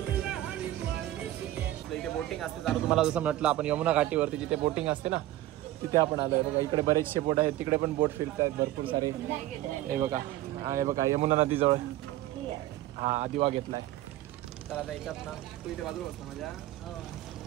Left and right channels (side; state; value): left; quieter; 14.9 dB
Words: इथे बोटिंग असते चालू, तुम्हाला जसं म्हटलं आपण यमुना घाटीवरती जिथे बोटिंग असते ना तिथे आपण आलोय बघा. इकडे बरेचसे बोट आहेत, तिकडे पण बोट फिरत आहेत भरपूर सारे. हे बघा, हे बघा यमुना नदीजवळ हा आदिवा घेतलाय. तर आता याच्यात ना तू इथे बाजूला होता माझ्या,